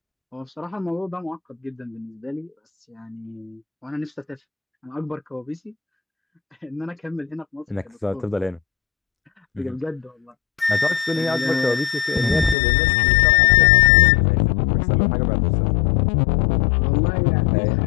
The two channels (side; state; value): right; drops out; at 12.6 s